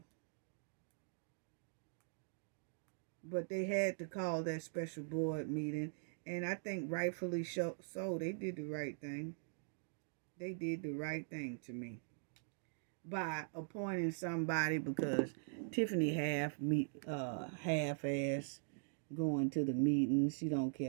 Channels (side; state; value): left; silent; digital silence